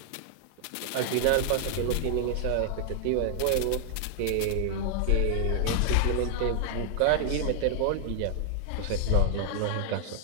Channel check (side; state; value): both; different; correlation 0.00